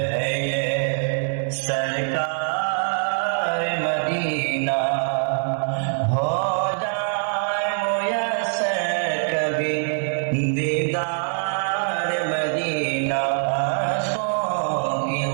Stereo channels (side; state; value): left; silent; digital silence